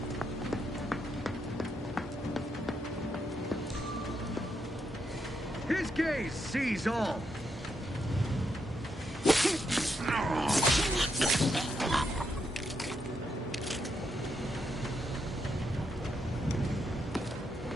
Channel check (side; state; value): both; normal; correlation 0.80